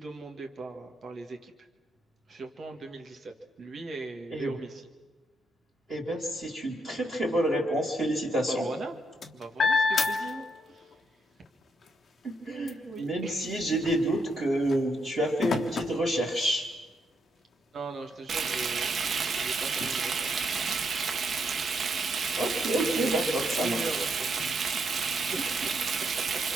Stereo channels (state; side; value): normal; both; correlation 0.78